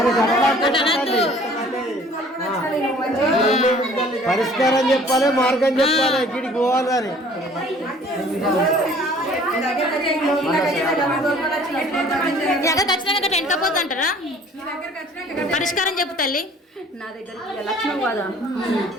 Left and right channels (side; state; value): both; normal; correlation 0.52